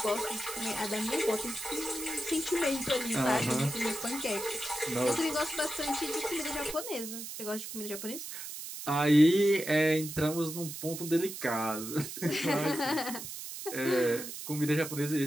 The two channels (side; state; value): right; noise; hiss, 9 dB below the sound